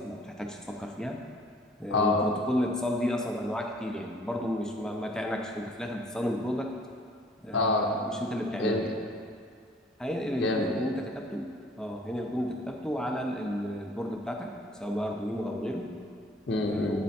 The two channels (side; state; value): both; normal; correlation 0.56